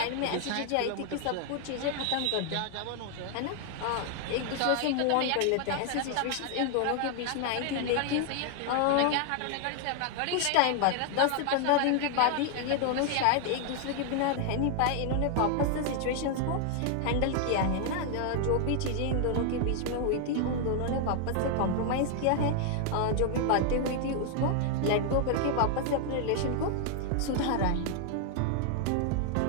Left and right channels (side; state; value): both; different; correlation 0.00